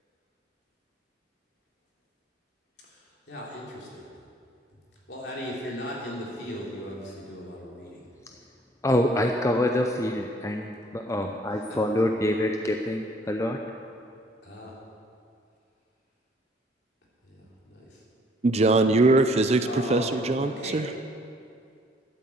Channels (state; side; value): normal; both; correlation 0.60